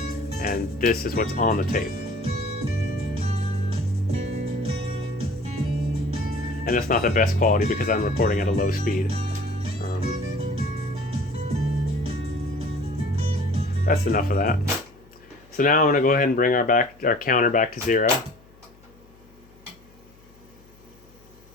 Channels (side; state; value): left; noise; hum, 27 dB below the sound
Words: And this is what's on the tape. And it's not the best quality because I'm recording at a low speed. That's enough of that. So now I'm going to go ahead and bring our counter back to 0.